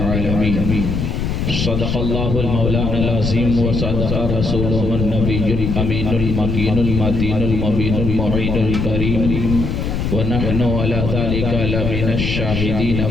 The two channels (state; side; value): noise; left; rumble, 1 dB below the sound